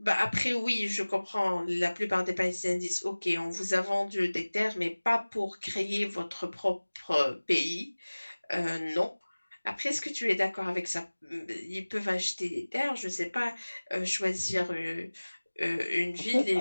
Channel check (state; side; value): inverted; both; correlation -1.00